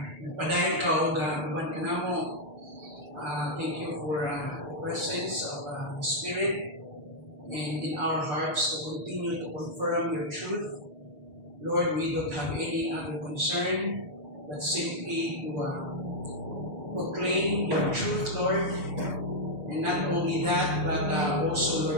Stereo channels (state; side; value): late; left; 6.8 ms